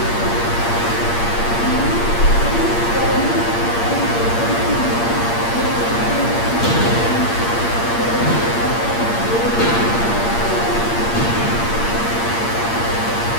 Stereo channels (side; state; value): right; late; 8.6 ms